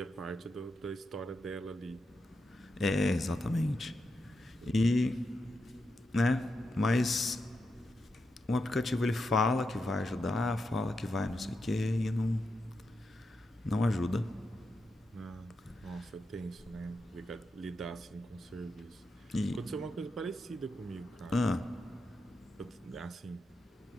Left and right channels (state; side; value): normal; both; correlation 0.86